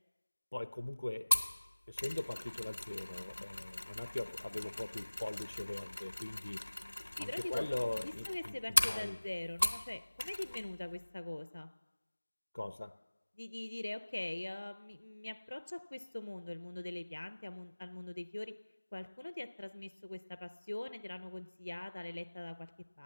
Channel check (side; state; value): both; inverted; correlation -1.00